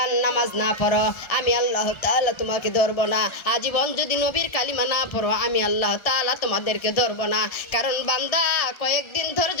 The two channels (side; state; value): right; late; 1.3 ms